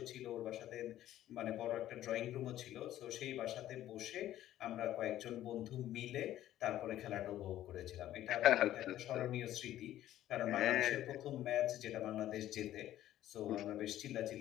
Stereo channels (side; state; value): right; quieter; 13.1 dB